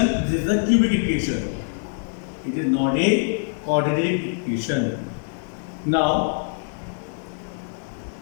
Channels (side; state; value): right; silent; digital silence